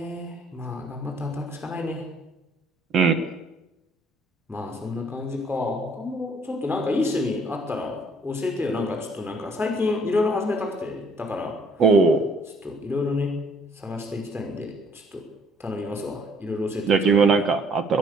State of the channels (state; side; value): normal; both; correlation 0.62